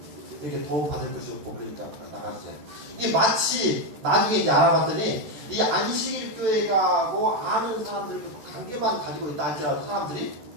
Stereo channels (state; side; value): late; left; 14 ms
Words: 이렇게 도움 받을 것이 없고 그러니까 나가주세요. 이게 마치 나중에 이제 알아봤더니 이 안식일 교회가고 아는 사람들 관계만 가지고 있다 할지라도 사람들이